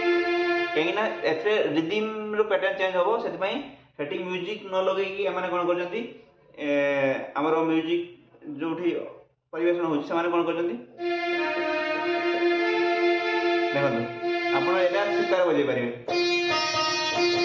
କାହିଁକିନା ଏଥିରେ ରିଦିମ୍ର ପ୍ୟାଟର୍ନ ଚେଞ୍ଜ ହେବ ସେଥିପାଇଁ ସେଠି ମ୍ୟୁଜିକ୍ ନ ଲଗେଇକି ଏମାନେ କ'ଣ କରୁଛନ୍ତି ଆମର ମ୍ୟୁଜିକ୍ ଯୋଉଠି ପରିବେଷଣ ହେଉଛି ସେମାନେ କ'ଣ କରୁଛନ୍ତି ଦେଖନ୍ତୁ ଆପଣ ଏଇଟା ଶିକାର ବଜେଇ ପାରିବେ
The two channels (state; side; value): identical; both; correlation 1.00